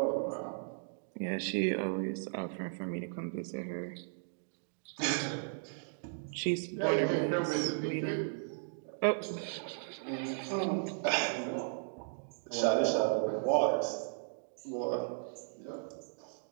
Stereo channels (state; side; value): silent; left; digital silence